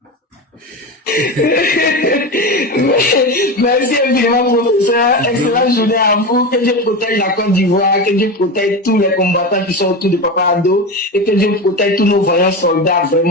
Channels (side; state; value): both; normal; correlation 0.21